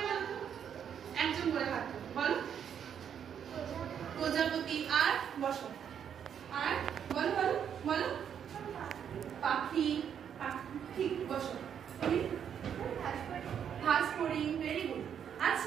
বলো তো? একজন করে হাত বলো। প্রজাপতি আর বসো, আর বলো বলো বলো। পাখি, ঠিক বসো। তুমি ঘাস ফড়িং, ভেরি গুড।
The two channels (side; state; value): left; quieter; 8.4 dB